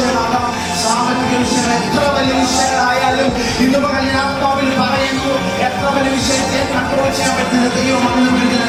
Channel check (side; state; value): both; identical; correlation 1.00